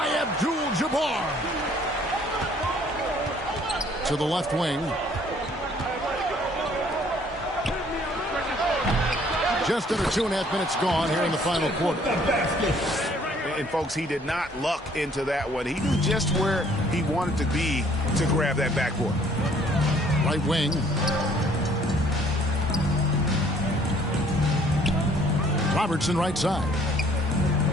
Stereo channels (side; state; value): both; normal; correlation 0.59